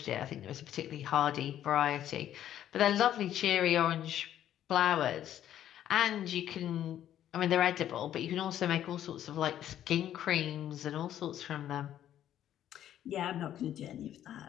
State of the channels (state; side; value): quieter; right; 11.3 dB